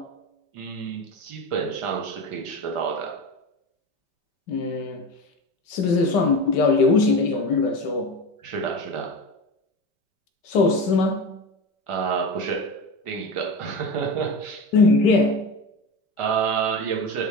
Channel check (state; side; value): late; right; 5.1 ms